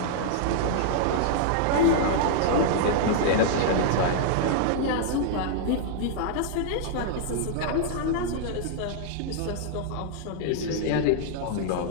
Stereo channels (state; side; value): different; both; correlation -0.01